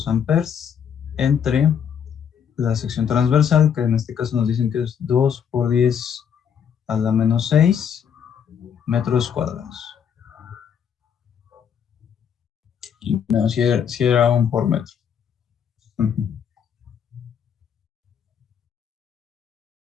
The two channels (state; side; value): quieter; right; 7.9 dB